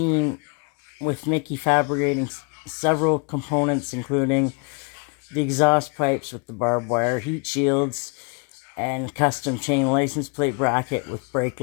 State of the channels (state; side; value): quieter; right; 35.1 dB